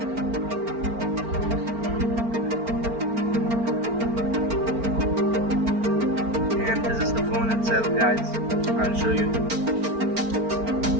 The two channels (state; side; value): late; left; 4.4 ms